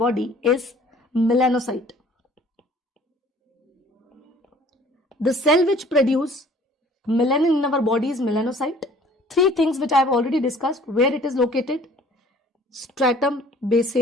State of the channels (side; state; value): both; normal; correlation 0.53